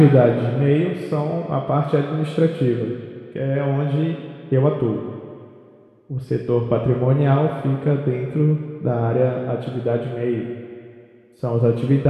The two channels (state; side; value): identical; both; correlation 1.00